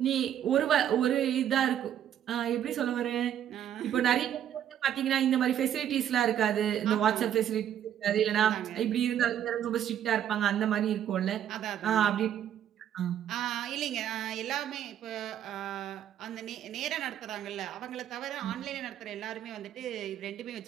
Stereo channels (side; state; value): left; quieter; 10.3 dB